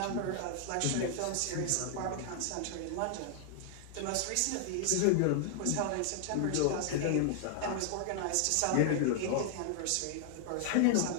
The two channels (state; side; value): different; both; correlation 0.00